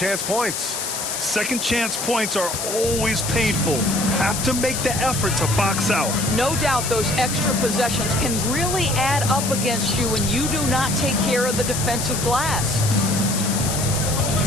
points. Second chance points are always painful. Have to make the effort to box out. No doubt those extra possessions can really add up against you when you do not take care of the defensive glass.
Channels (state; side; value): noise; left; hiss, 3 dB below the sound